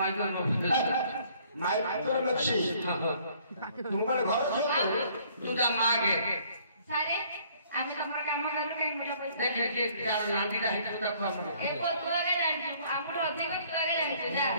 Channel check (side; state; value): both; inverted; correlation -0.60